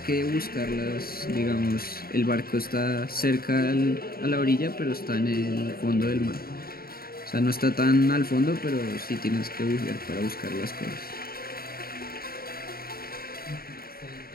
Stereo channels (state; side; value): late; right; 0.44 ms